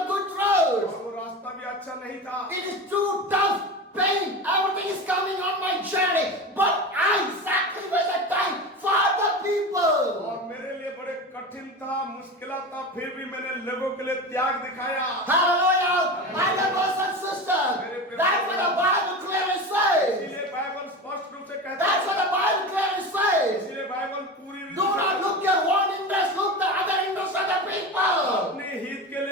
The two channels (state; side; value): normal; both; correlation 0.27